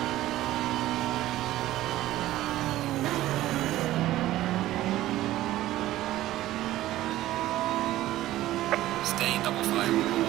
Stay in double file.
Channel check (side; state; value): left; quieter; 15.0 dB